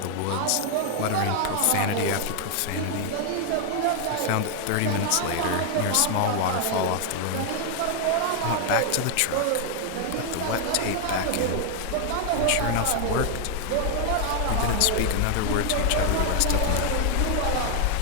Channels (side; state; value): both; different; correlation 0.00